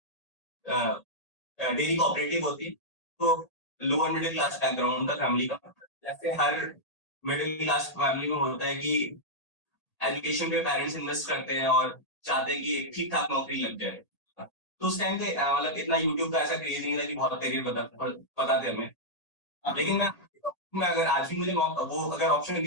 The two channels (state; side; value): late; right; 1.8 ms